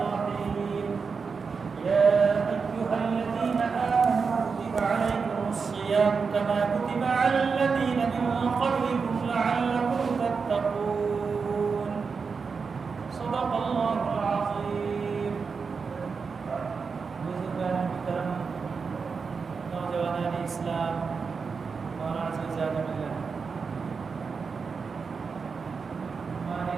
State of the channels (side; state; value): left; quieter; 5.2 dB